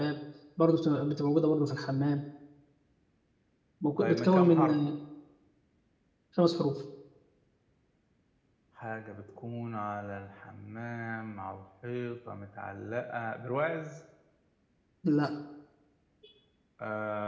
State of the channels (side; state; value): both; identical; correlation 1.00